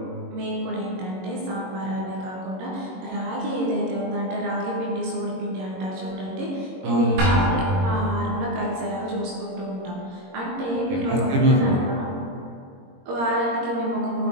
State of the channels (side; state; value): left; late; 22 ms